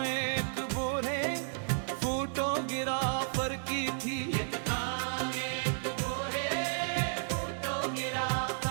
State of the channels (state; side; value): silent; left; digital silence